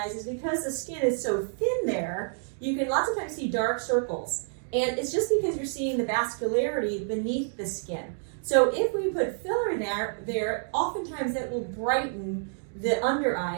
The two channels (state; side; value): silent; left; digital silence